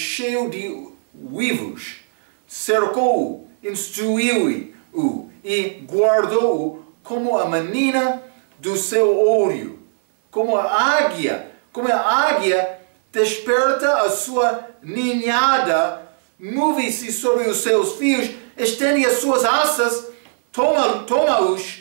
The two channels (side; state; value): left; silent; digital silence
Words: de uivos. Cercou-o, instruiu-o e guardou-o como a menina do seu olho. Como a águia desperta a sua ninhada, move-se sobre os seus fios, estende as suas asas,